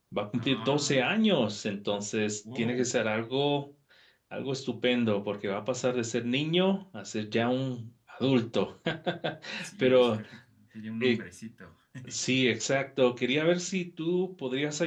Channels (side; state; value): both; identical; correlation 1.00